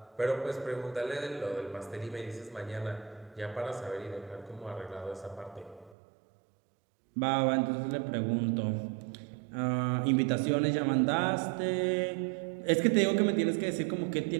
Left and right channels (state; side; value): drops out; left; at 6.0 s